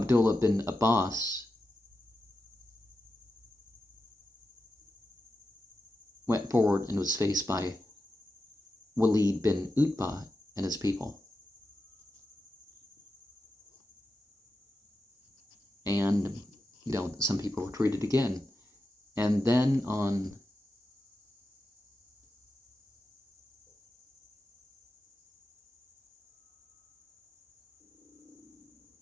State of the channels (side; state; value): both; normal; correlation 0.90